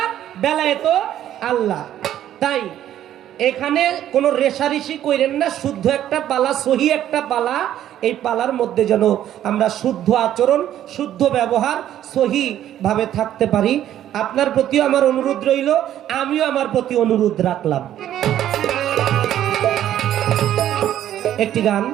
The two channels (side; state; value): left; quieter; 11.6 dB